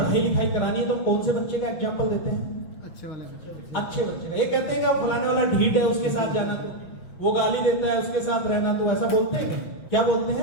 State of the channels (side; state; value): right; late; 6.0 ms